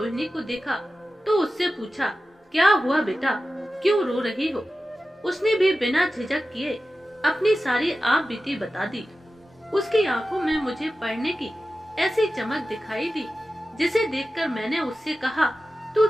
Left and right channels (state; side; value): normal; both; correlation 0.94